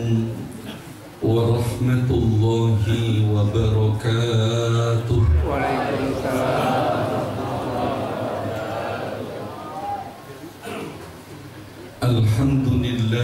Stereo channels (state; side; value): identical; both; correlation 1.00